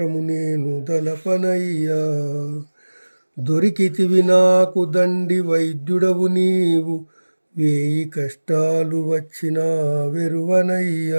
నేను దలపనయ్యా. దొరికితివి నాకు దండి వైద్యుడవు నీవు, వేయి కష్టాలు వచ్చినా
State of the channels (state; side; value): inverted; both; correlation -1.00